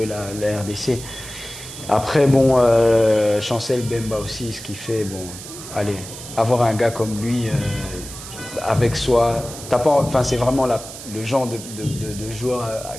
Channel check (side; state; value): right; noise; hiss, 13 dB below the sound